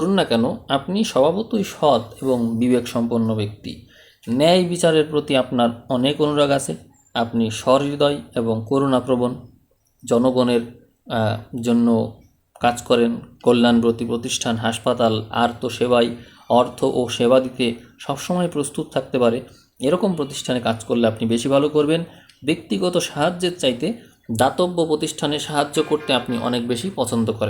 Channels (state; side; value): identical; both; correlation 1.00